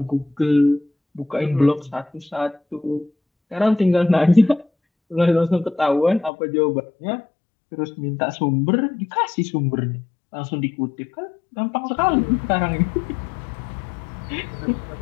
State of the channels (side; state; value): right; drops out; at 6.3 s